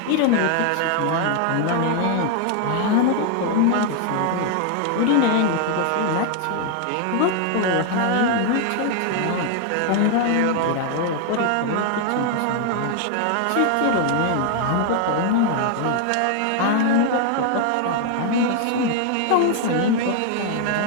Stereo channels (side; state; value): both; different; correlation 0.00